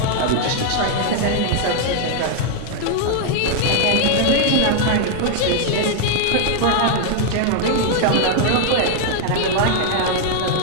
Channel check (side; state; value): both; different; correlation 0.00